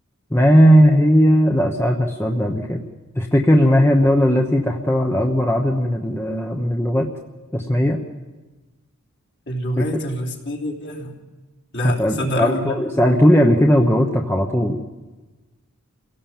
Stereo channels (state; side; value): normal; both; correlation 0.89